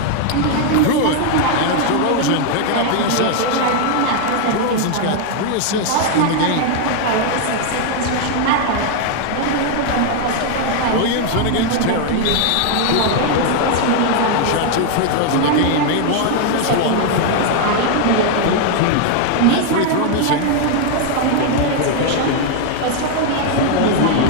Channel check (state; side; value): different; both; correlation 0.00